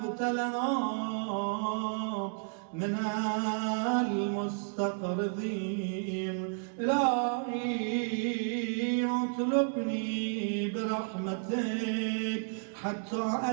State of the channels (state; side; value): silent; left; 56 dB below the other